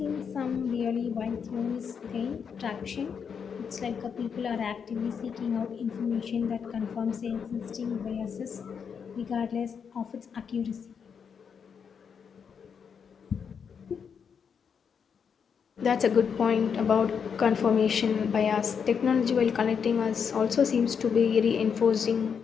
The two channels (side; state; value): right; quieter; 6.7 dB